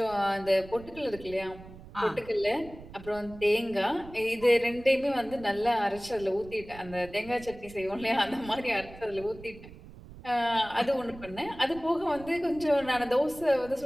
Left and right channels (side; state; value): right; noise; rumble, 17 dB below the sound